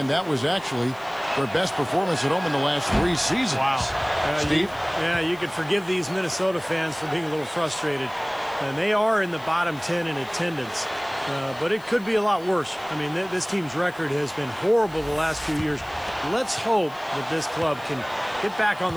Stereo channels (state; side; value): noise; left; hiss, 25 dB below the sound